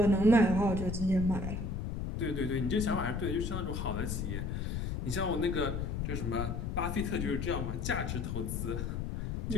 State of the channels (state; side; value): noise; left; rumble, 2 dB below the sound